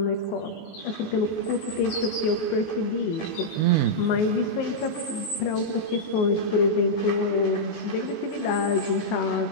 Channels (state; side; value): late; right; 19 ms